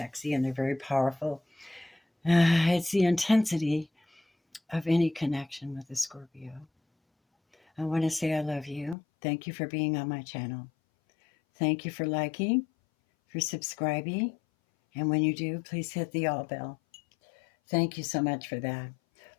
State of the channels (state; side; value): drops out; right; at 9.0 s